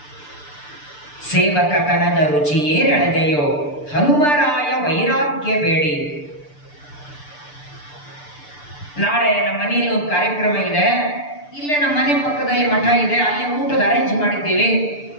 ಸೇವಕ ಕಣದ ರುಚಿಯೇರಳದೆಯೋ ಹನುಮರಾಯ ವೈರಾಗ್ಯ ಬೇಡಿ. ನಾಳೆ ನಮ್ಮ ಮನೆಯಲ್ಲಿ ಒಂದು ಕಾರ್ಯಕ್ರಮ ಇದೆ, ಇಲ್ಲೇ ನಮ್ಮ ಮನೆ ಪಕ್ಕದಲ್ಲಿ ಮಠ ಇದೆ, ಅಲ್ಲಿ ಊಟದ ಅರೇಂಜ್ ಮಾಡಿದ್ದೀವಿ,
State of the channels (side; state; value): right; late; 6.8 ms